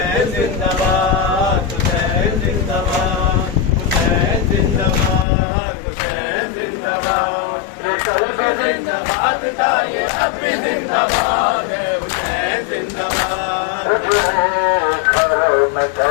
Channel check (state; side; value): drops out; right; at 5.2 s